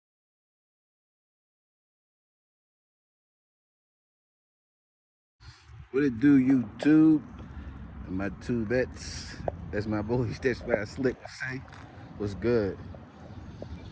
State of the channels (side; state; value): both; identical; correlation 1.00